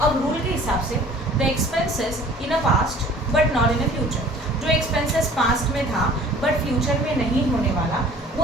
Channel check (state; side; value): normal; both; correlation 0.49